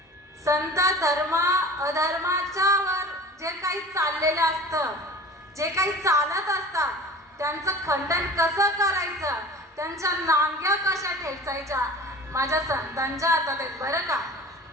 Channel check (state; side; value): normal; both; correlation 0.40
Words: संत अधर्माच्या वर जे काही चाललेलं असतं, जे काही चालत असतात त्यांचं खंडन कसं करायचं, त्यांच्या नांग्या कशा ठेचायच्या, माझ्या संतांच्या हातात आहेत बरं का.